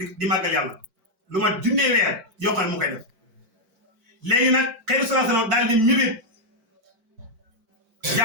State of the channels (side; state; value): left; late; 4.5 ms